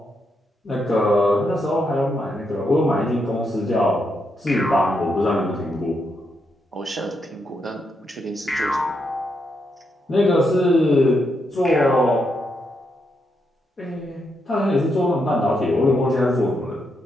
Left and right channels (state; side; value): normal; both; correlation 0.81